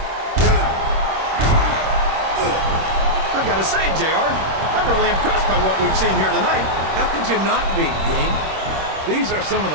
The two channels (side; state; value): left; late; 26 ms